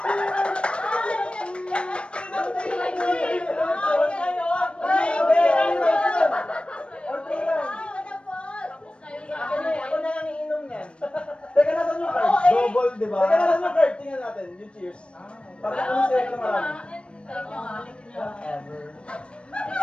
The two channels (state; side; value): late; right; 0.058 ms